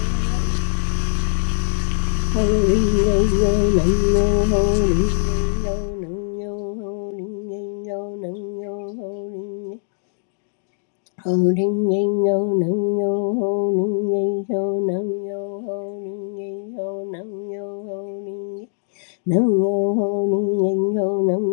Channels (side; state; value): right; silent; digital silence